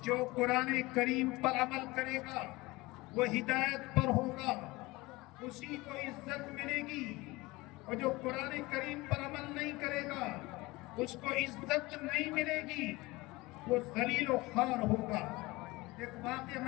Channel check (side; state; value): right; quieter; 21.7 dB